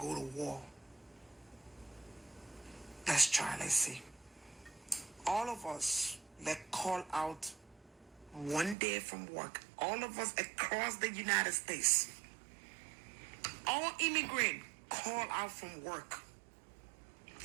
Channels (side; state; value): left; drops out; at 8.8 s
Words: to war, let's try, let's see. All of us, let's call out one day from work. All of us across the United States. All immigrants call out from work.